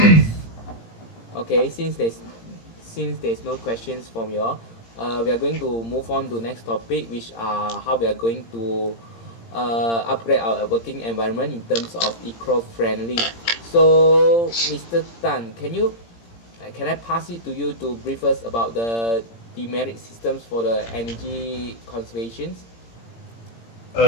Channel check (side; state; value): right; late; 17 ms